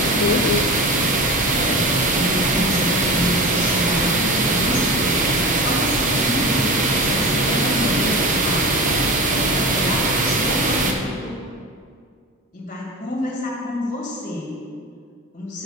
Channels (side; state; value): both; normal; correlation 0.29